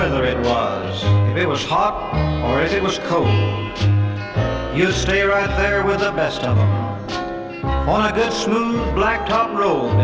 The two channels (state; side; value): identical; both; correlation 1.00